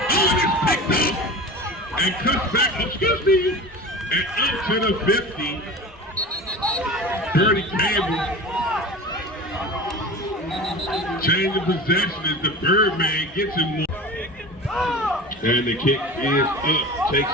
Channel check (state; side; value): normal; both; correlation 0.34